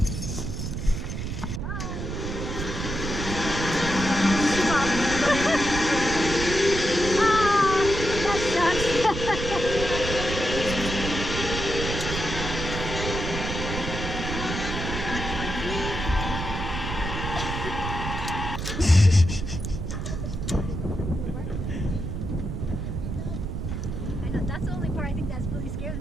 That's the only part I think that's really scares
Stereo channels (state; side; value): noise; right; rumble, 4 dB below the sound